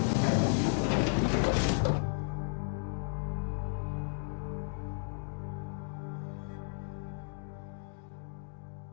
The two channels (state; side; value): silent; right; 55 dB below the other